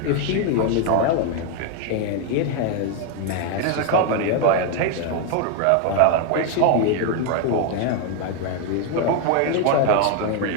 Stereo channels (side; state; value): both; different; correlation 0.01